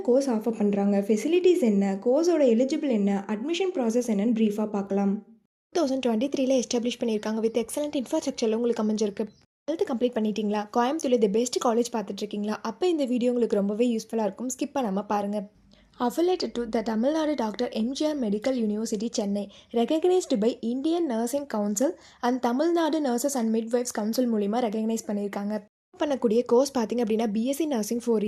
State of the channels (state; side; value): identical; both; correlation 1.00